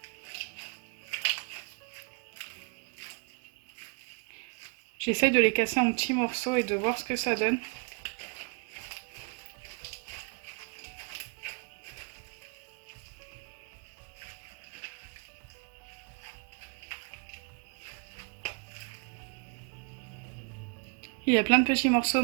J'essaye de les casser en petits morceaux et de voir ce que ça donne. Il y a plein de petits morceaux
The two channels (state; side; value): quieter; left; 35.3 dB